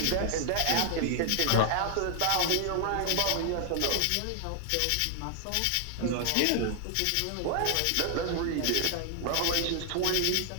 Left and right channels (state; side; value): different; both; correlation 0.00